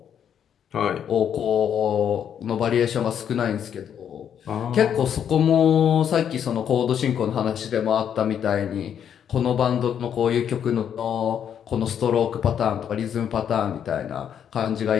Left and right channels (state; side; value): quieter; right; 8.7 dB